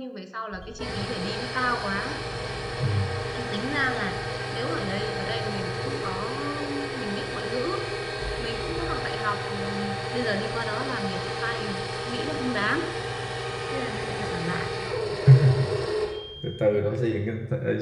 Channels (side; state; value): both; identical; correlation 1.00